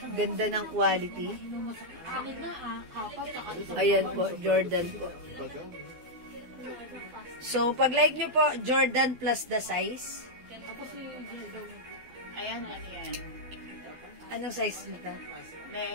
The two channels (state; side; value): late; left; 12 ms